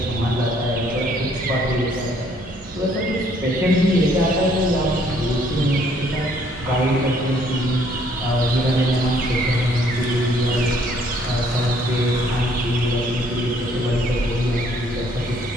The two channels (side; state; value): both; normal; correlation 0.64